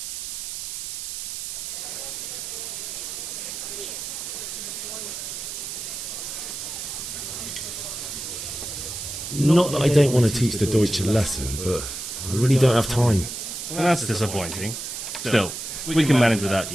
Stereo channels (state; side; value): noise; right; hiss, 6 dB below the sound